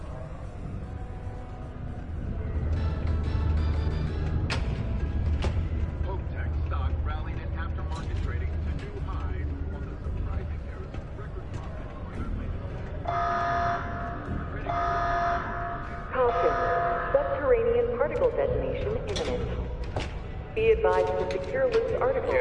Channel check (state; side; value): identical; both; correlation 1.00